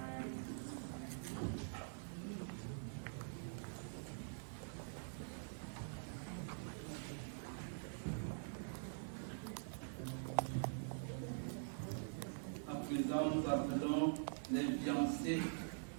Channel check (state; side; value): silent; left; digital silence